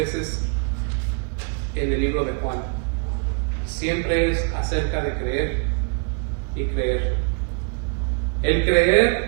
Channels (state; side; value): quieter; left; 38.9 dB